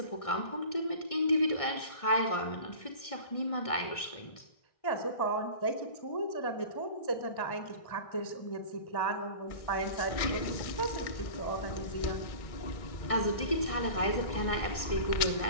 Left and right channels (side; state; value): right; late; 1.6 ms